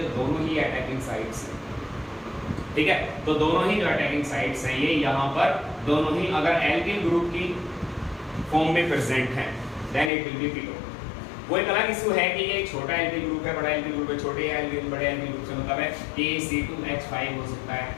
जो दोनों ही अटैकिंग साइड्स हैं, ठीक है, तो दोनों ही जो अटैकिंग साइड्स हैं ये यहाँ पर दोनों ही अगर एल्किल ग्रुप की फॉर्म में प्रेजेंट है, then it will be ketone. वो एक अलग इशू है कि ये छोटा एल्किल ग्रुप है, बड़ा एल्किल ग्रुप है, छोटे एल्किल बड़े एल्किल ग्रुप से मतलब है कि ये C2H5 हो सकता है,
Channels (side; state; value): right; drops out; at 10.1 s